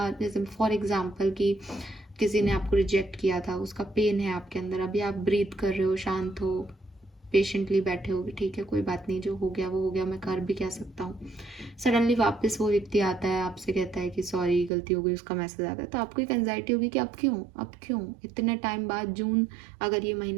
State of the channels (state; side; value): drops out; left; at 14.7 s